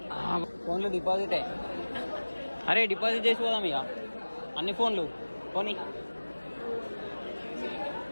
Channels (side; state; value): both; inverted; correlation -1.00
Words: ఫోన్లు డిపాజిటే. అరే డిపాజిట్ చేసి పోదాం ఇక అన్ని ఫోన్లు పోనీ.